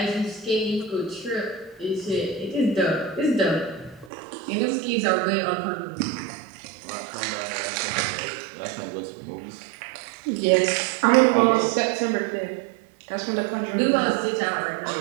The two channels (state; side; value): drops out; left; at 4.1 s